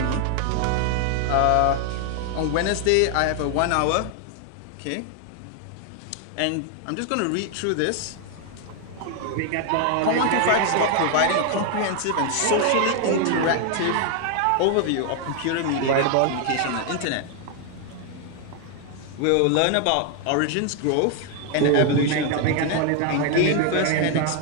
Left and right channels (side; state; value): both; different; correlation 0.00